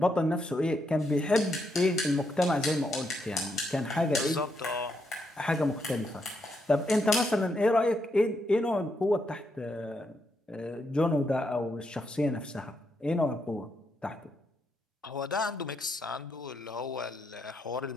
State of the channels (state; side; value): normal; both; correlation 0.79